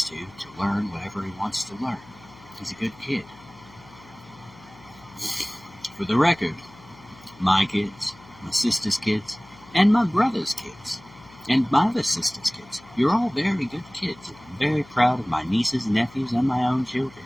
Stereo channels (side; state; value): left; noise; hum, 23 dB below the sound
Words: to learn whatever he wants to learn. He's a good kid. For the record, my kids, my sister's kids, and my brother's kids, and my other sister's kids, you're all very good kids. I'm very proud of my nieces, nephews, and my own children.